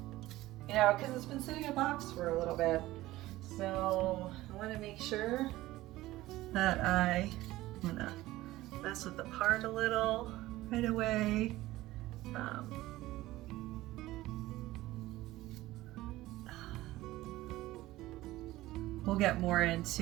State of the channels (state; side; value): quieter; left; 17.1 dB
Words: You know, because it's been sitting in a box for a little bit. So I wanna make sure that I'm gonna mess with the part a little right away. We'll get more